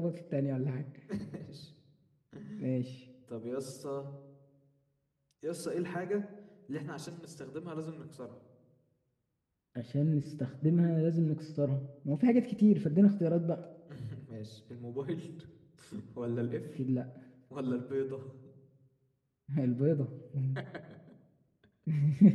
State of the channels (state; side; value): identical; both; correlation 1.00